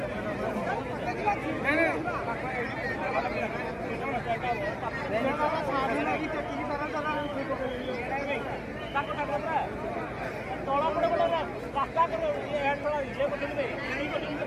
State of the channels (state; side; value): identical; both; correlation 1.00